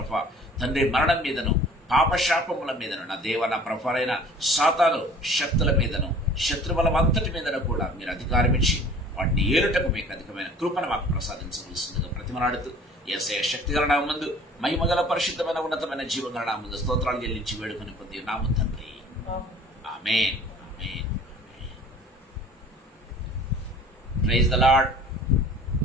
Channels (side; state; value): both; normal; correlation 0.48